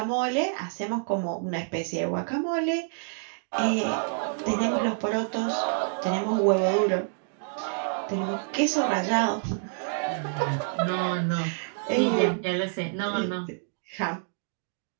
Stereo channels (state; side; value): silent; left; 60 dB below the other